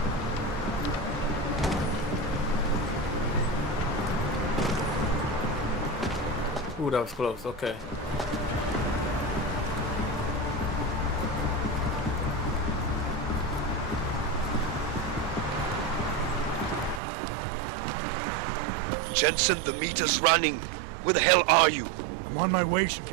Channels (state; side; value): drops out; left; at 17.0 s